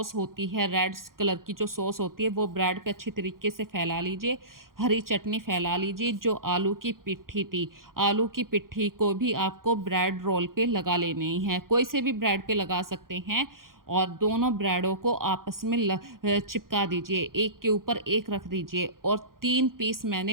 होती है, रेड कलर की जो सॉस होती है, वो ब्रेड पे अच्छी तरीके से फैला लीजिए। हरी चटनी फैला लीजिए। जो आलू की पिट्ठी थी, आलू की पिट्ठी को भी आपको ब्रेड रोल पे लगा लेनी है। कोई से भी ब्रेड पे लगा सकते हैं और दोनों ब्रेडों को आपस में चिपका दीजिए, एक के ऊपर एक रख दीजिए और 3 पीस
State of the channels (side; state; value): left; late; 0.91 ms